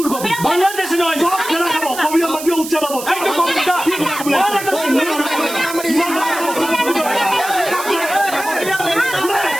কবি বাংলাদেশ নহয় খাব কবি মাটি উচ্চে পাব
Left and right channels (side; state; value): right; noise; hiss, 10 dB below the sound